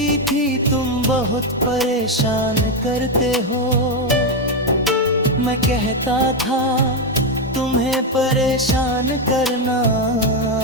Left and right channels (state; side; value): normal; both; correlation 0.06